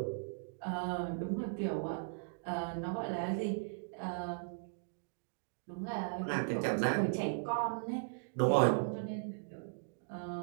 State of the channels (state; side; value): silent; left; digital silence